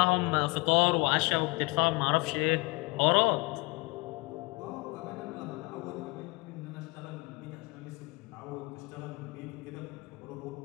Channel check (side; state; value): right; quieter; 25.6 dB